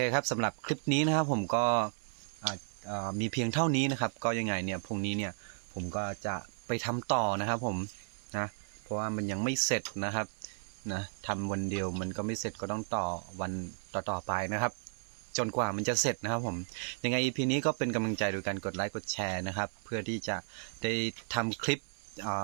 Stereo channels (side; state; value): left; silent; 55 dB below the other